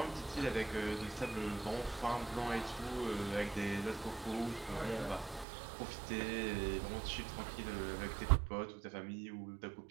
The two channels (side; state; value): left; drops out; at 5.5 s